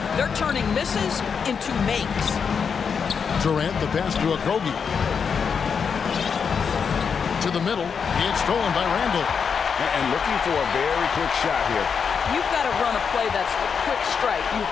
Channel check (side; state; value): right; quieter; 6.3 dB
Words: They're turning misses into makes. Durant, the pass to Okogie. To the middle. It's stolen by Randall. And looking for a very quick shot here. You've got to run a play that's a quick strike. You've